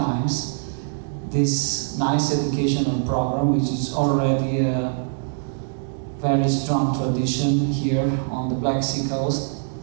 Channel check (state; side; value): silent; left; digital silence